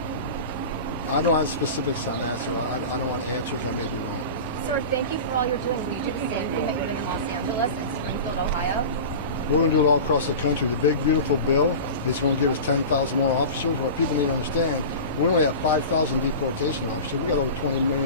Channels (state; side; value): inverted; both; correlation -0.31